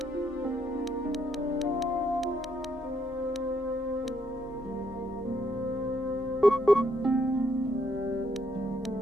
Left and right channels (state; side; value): normal; both; correlation 0.73